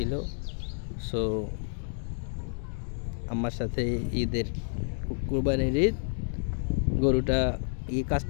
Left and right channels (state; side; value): silent; right; digital silence